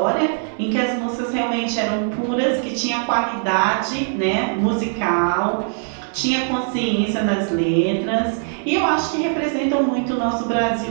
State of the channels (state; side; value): silent; left; 64 dB below the other